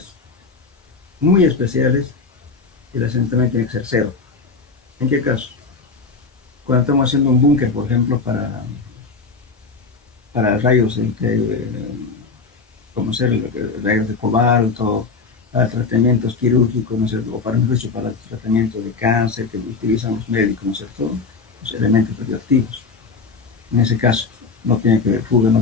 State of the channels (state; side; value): quieter; right; 4.5 dB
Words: muy especiales el asentamiento tiene que ser cero. ¿En qué caso? Cuando estamos haciendo un búnker, por ejemplo, para rayos, como ser rayos de cobalto, para tratamientos quirúrgicos, ¿no es cierto?, o para el tratamiento de cáncer que utilizan los médicos, ¿no es cierto?, los elementos radioactivos. En ese caso, no tiene que ver fuga, no